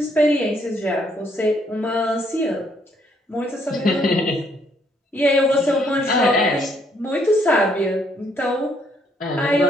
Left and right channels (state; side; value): normal; both; correlation 0.69